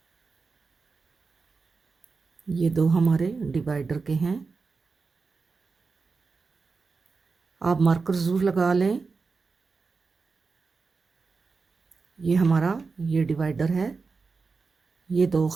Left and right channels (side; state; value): left; quieter; 4.5 dB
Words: ये 2 हमारे डिवाइडर के हैं। आप मार्कर ज़रूर लगा लें। ये हमारा ये डिवाइडर है, ये 2